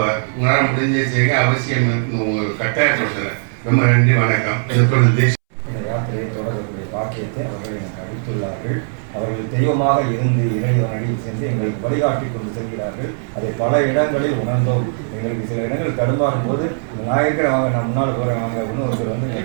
உங்களால் முடிஞ்ச செய்ய அவசியம் உங்களுக்கு கட்டாயப்படுத்துகிறேன். ரொம்ப நன்றி, வணக்கம். இது இந்த யாத்திரையை தொடர்புடைய பாக்கியத்தை அவர்கள் எனக்கு அளித்துள்ளார்கள். அவர்கள் தெய்வமாக இருந்து இறைவன் அடியில் சென்று எங்களுக்கு வழிகாட்டி கொண்டு செல்கிறார்கள். அதை பல இடங்களில் உணர்ந்தோம். எங்களுக்கு சில இடங்கள் தடுமாறும் போது நான் இருக்கிற வாங்க, நான் முன்னால் போகிறேன் வாங்க அப்படின்னு ஒருத்தர்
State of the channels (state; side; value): silent; left; 67 dB below the other